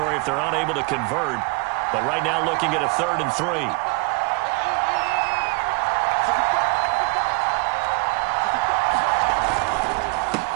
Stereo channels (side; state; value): left; quieter; 29.4 dB